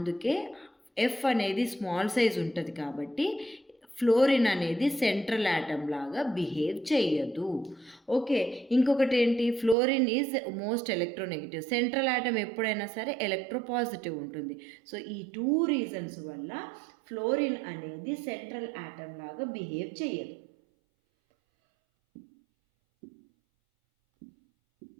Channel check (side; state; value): left; drops out; at 9.8 s